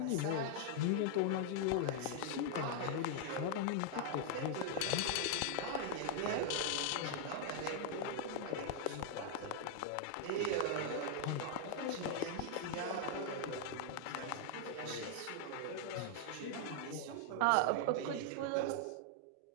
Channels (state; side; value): different; both; correlation 0.00